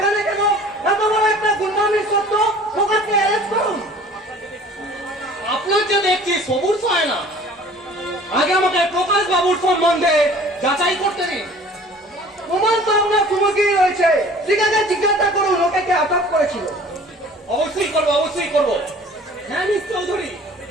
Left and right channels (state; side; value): normal; both; correlation 0.48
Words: কেন? এত বড় একটা গুন্ডামির সত্য প্রকাশকে অ্যারেস্ট করুন। আপনার যে দেখছি সবুর হয় না, আগে আমাকে প্রকাশ বাবুর সম্বন্ধে যাচাই করতে দিন। প্রমাণ তো আপনার সুমুখেই রয়েছে। ঠিক আছে, জিজ্ঞাসা করুন ওকে কে আটক করেছিল। অবশ্যই করবো, অবশ্যই করবো। হ্যাঁ মিস চৌধুরী,